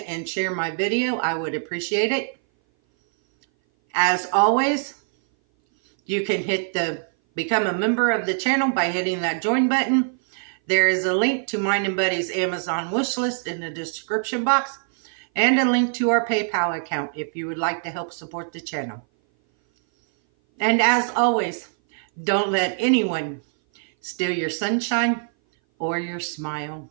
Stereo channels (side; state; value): left; silent; 58 dB below the other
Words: and share my video. I would appreciate it. As always, you can hit the become a member of the channel by hitting that join button. There is a link to mine and Buddy's Amazon wish list in the description box, and a link to our PayPal account if you would like to help support the channel. And as always, don't let anyone steal your sunshine or your smile.